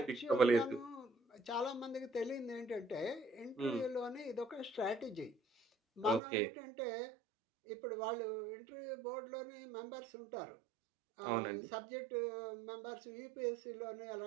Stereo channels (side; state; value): left; drops out; at 6.2 s